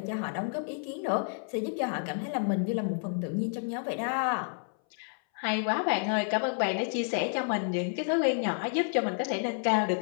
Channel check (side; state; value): right; silent; 58 dB below the other